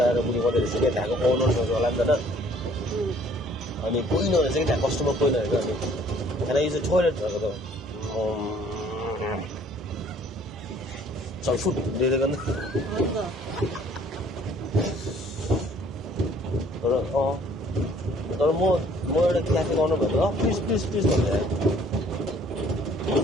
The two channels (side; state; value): both; normal; correlation 0.58